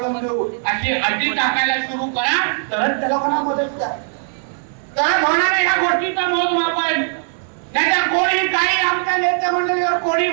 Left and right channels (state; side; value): silent; left; 58 dB below the other